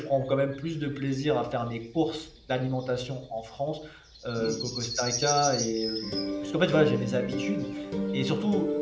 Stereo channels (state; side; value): identical; both; correlation 1.00